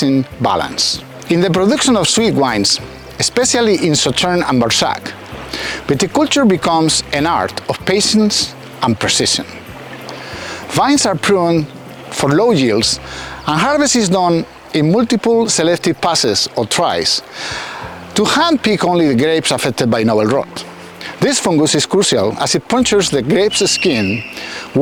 balance. In the production of sweet wines, especially in Sauternes and Barsac, viticulture becomes an art of patience and precision. Vines are pruned for low yields, and harvest is done in multiple selective passes or tries to hand-pick only the grapes affected by novel rot. This fungus is crucial as it punctures the grape's skin,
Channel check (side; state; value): both; identical; correlation 1.00